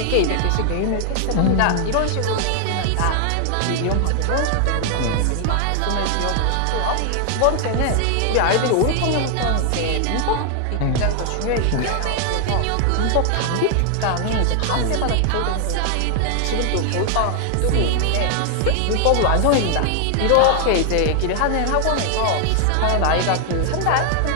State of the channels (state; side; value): different; both; correlation 0.00